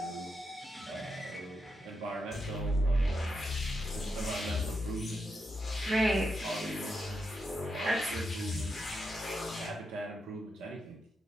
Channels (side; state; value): both; normal; correlation 0.84